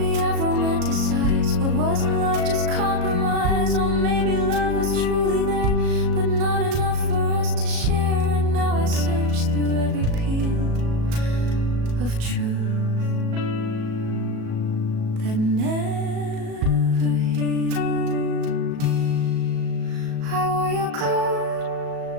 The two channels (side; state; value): left; late; 37 ms